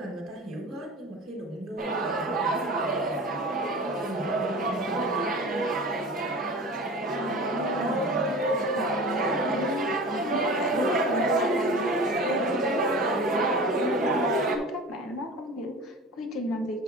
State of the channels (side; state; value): both; normal; correlation 0.36